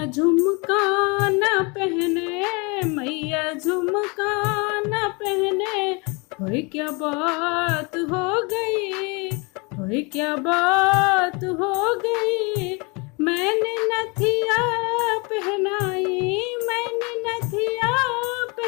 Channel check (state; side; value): quieter; right; 29.7 dB